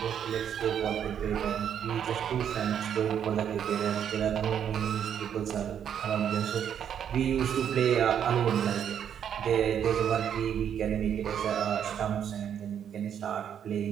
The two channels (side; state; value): left; quieter; 8.8 dB